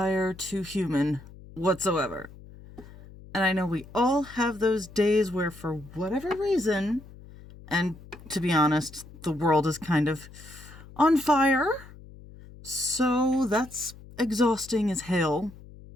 to human whatsoever. And I know we all have those days where, for whatever reason, and to be honest, the world is kind of on fire. So that's exhausting as hell.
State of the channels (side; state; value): left; noise; hum, 19 dB below the sound